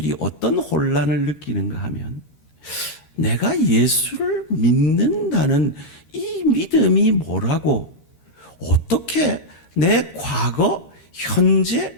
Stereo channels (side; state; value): right; late; 13 ms